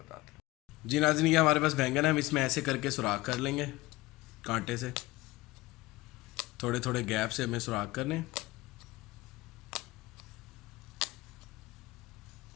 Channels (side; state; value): right; quieter; 19.8 dB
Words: हैं। जी नाज़रीन, ये हमारे पास बैंगन है, हम इसमें ऐसे करके सुराख कर लेंगे कांटे से। थोड़े थोड़े गैप से हमें सुराख करने।